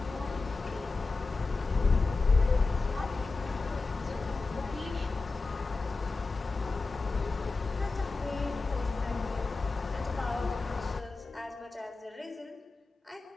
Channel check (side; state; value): right; quieter; 3.8 dB